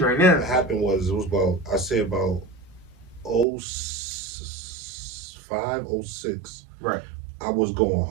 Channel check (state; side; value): drops out; left; at 3.5 s